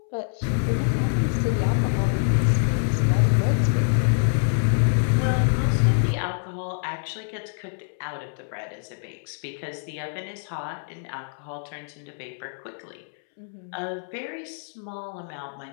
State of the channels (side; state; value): right; silent; 61 dB below the other